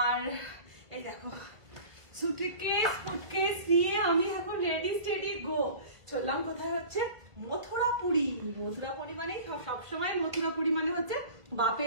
আর এই দেখো সুটকেস ফুটকেস নিয়ে আমি এখন রেডি স্টেডি গো চললাম। কোথায় হচ্ছে? মথুরাপুরি। মথুরাপুরি মানে সবসময় মথুরাপুরি মানে হচ্ছে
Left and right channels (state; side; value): late; left; 1.5 ms